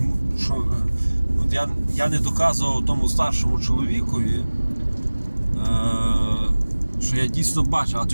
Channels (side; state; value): both; inverted; correlation -1.00